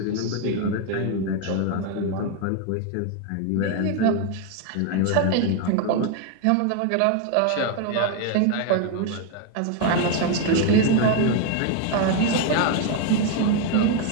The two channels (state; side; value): different; both; correlation 0.01